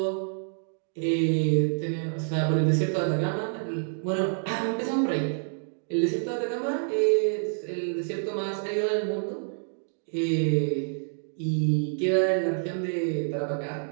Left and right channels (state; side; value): silent; left; digital silence